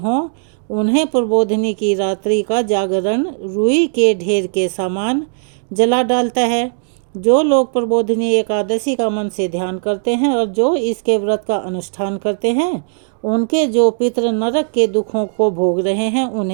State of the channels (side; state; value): left; silent; digital silence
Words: उन्हें प्रबोधनी की रात्रि का जागरण रुई के ढेर के समान जला डालता है। जो लोग प्रबोधनी एकादशी का मन से ध्यान करते हैं और जो इसके व्रत का अनुष्ठान करते हैं उनके जो पितृ नरक के दुखों को भोग रहे हैं